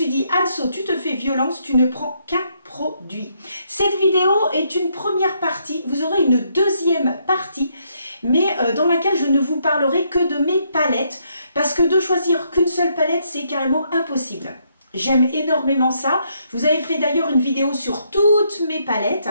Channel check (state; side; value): inverted; both; correlation -0.74